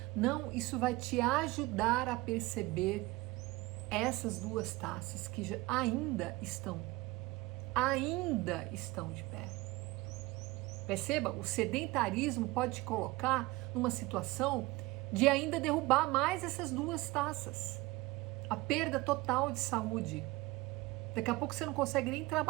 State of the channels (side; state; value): left; quieter; 21.0 dB